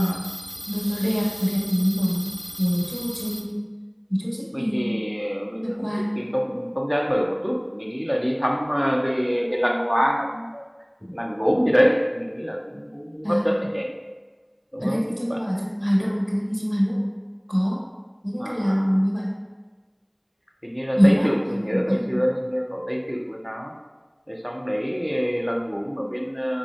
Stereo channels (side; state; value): both; identical; correlation 1.00